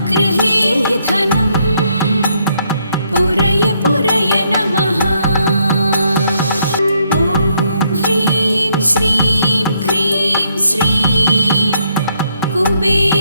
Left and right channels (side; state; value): both; inverted; correlation -0.73